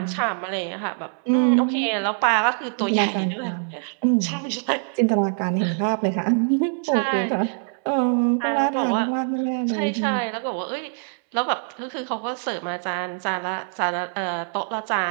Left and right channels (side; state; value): left; silent; 63 dB below the other